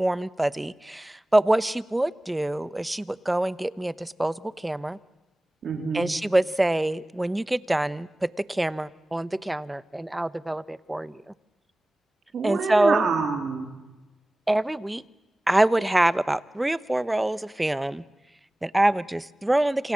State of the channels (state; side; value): normal; both; correlation 0.98